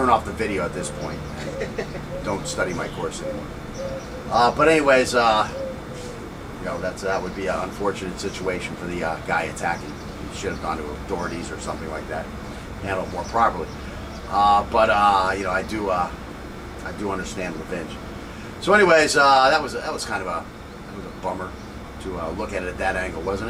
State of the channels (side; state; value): both; identical; correlation 1.00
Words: off the video at this point. Don't study my course anymore. But anyways, you know, that would be an unfortunate situation for the guy attacking. He should have gone to authorities or something like that, handle it more properly. But you know, I do understand revenge. So anyways, that was kind of a bummer to look at it at that angle,